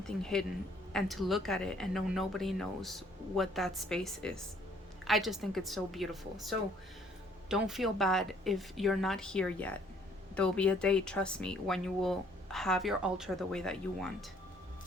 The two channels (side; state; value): both; normal; correlation 0.62